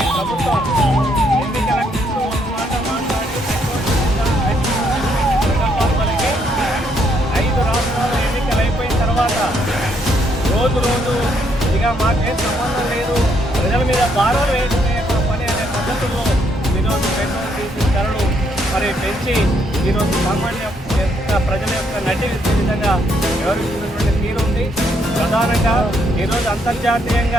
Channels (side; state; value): both; normal; correlation 0.73